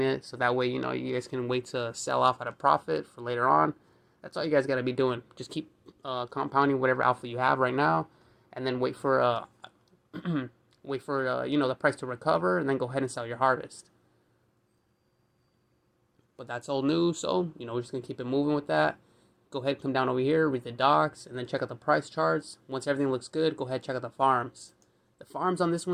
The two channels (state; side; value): identical; both; correlation 1.00